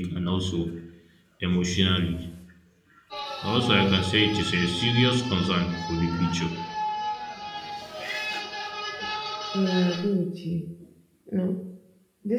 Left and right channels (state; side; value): identical; both; correlation 1.00